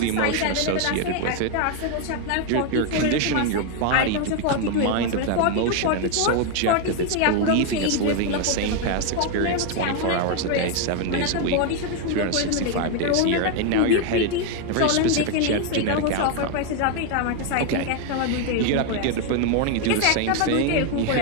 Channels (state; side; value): different; both; correlation 0.01